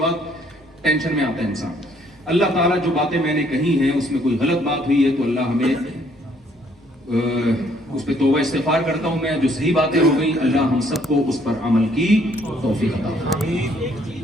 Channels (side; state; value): both; normal; correlation 0.65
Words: ٹینشن میں آتا ہے انسان. اللہ تعالیٰ جو باتیں میں نے کہی ہیں اس میں کوئی غلط بات ہوئی ہے تو اللہ ہمیں اس پہ توبہ استغفار کرتا ہوں میں. جو صحیح باتیں ہو گئی اللہ ہم سب کو اس پر عمل کی توفیق عطا فرمائے.